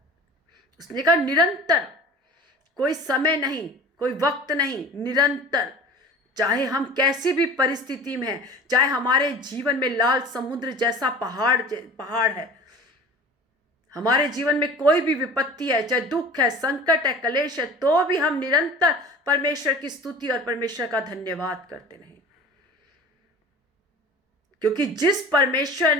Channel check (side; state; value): both; normal; correlation 0.40